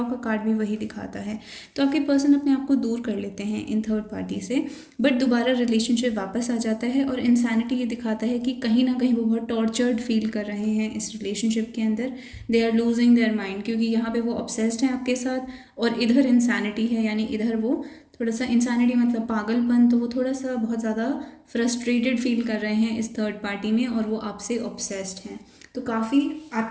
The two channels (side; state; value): both; identical; correlation 1.00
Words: का कार्ड भी वही दिखाता है। तो आपके पर्सन अपने आप को दूर कर लेते हैं इन थर्ड पार्टी से, बट दोबारा रिलेशनशिप वापस आ जाता है। और इंसैनिटी ये दिखाता है कि कहीं ना कहीं वो बहुत टॉर्चर्ड फील कर रहे हैं इस रिलेशनशिप के अंदर, they are losing their mind, क्योंकि यहाँ पे वो ऑब्सेस्ड हैं आपके साथ, और इधर इंसैनिटी है, यानी इधर वो थोड़ा सा, इंसानिटी मतलब पागलपन, तो वो थोड़ा सा बहुत ज़्यादा फ्रस्ट्रेटेड फील कर रहे हैं इस थर्ड पार्टी में, और वो आपसे ऑब्सेस्ड हैं। तो काफ़ी